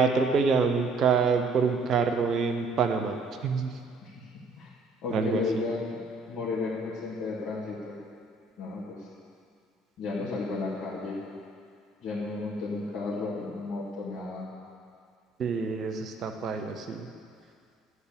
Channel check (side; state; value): left; quieter; 3.0 dB